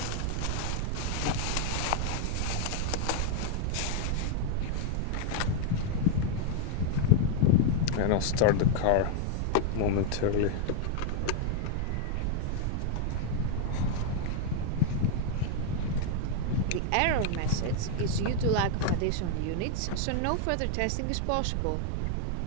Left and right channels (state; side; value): different; both; correlation 0.00